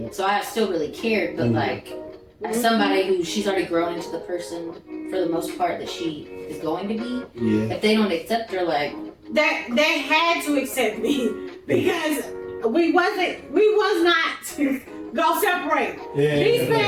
So I still really cared, but like as somebody who she's already grown into the person for the most part that she is going to be. If they don't accept her, like they had to accept me because we was not go separate. These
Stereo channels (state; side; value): identical; both; correlation 1.00